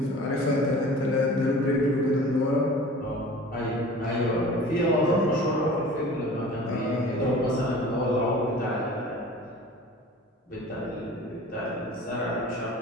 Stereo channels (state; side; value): normal; both; correlation 0.42